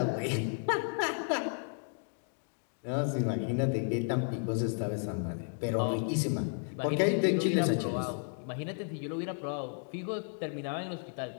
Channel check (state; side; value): silent; right; 56 dB below the other